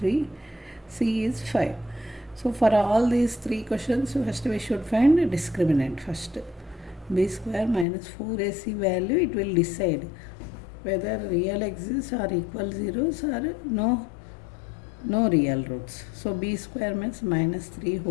c is 5. So for all these three questions, first we should find a discriminant. First, b square minus 4ac value, it will decide whether real exists or equal zeros or no real roots. So b square means minus 3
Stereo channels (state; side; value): drops out; right; at 7.9 s